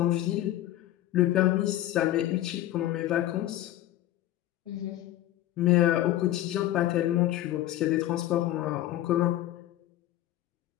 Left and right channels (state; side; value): quieter; right; 14.2 dB